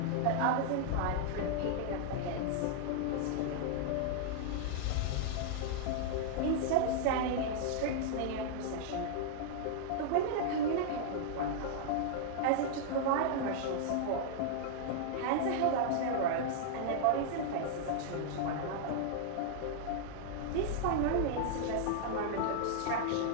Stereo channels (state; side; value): different; both; correlation -0.01